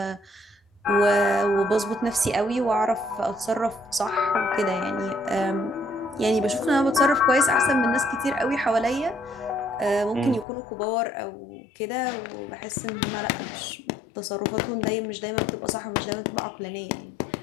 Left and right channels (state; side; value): drops out; right; at 10.5 s